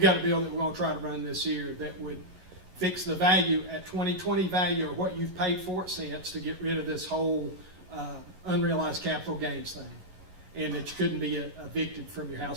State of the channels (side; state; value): left; late; 11 ms